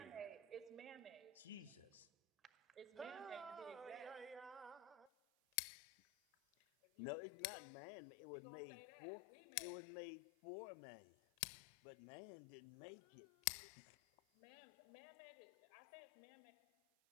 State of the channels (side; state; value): right; drops out; at 5.1 s